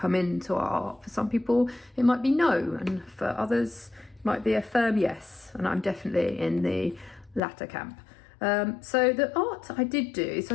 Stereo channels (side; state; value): right; drops out; at 7.4 s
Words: into our art? For some people it might be no, and for others it might be a firm yes, and I'm definitely in the latter camp. So the art I did do, so